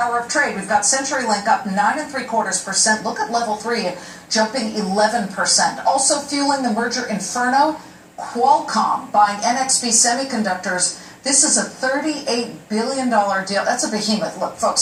of trade. We've got CenturyLink up 9.75%. Look at Level 3 jumping 11%. Also fueling the merger inferno, Qualcomm buying NXP Semiconductors. This is a $38 billion deal. That's a behemoth. Look,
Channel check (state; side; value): identical; both; correlation 1.00